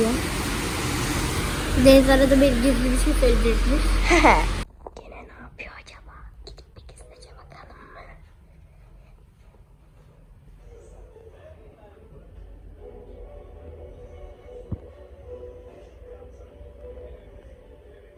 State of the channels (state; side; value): identical; both; correlation 1.00